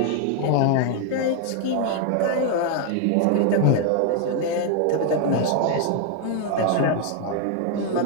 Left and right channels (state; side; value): different; both; correlation 0.01